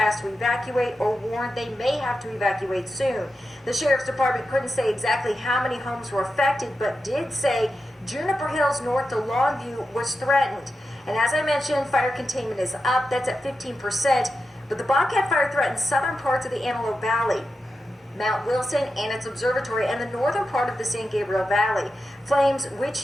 to evacuate or warned they may have to evacuate soon. The Sheriff's Department couldn't say exactly how many homes were affected, but did say Juniper Hills north to Longview was threatened. And as I mentioned, fire containment is up. That's at 15%. But the Bobcat fire threatened southern parts of the Antelope Valley, Mount Wilson and its observatory, and the northern part of the San Gabriel Valley. Flames,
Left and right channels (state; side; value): normal; both; correlation 0.89